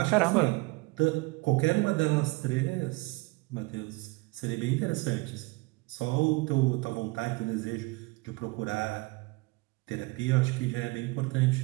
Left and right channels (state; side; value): quieter; left; 24.5 dB